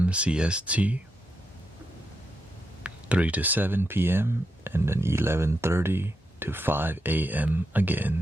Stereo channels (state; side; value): normal; both; correlation 0.84